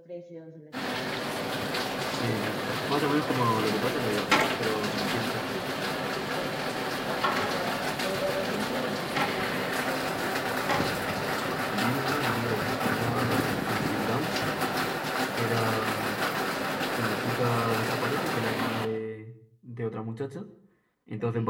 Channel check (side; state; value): both; identical; correlation 1.00